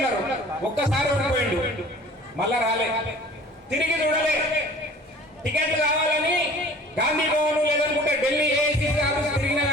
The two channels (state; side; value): normal; both; correlation 0.47